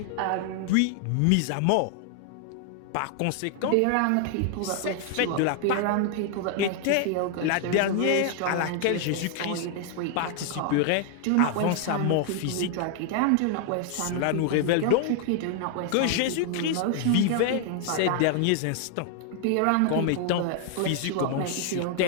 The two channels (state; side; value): different; both; correlation 0.00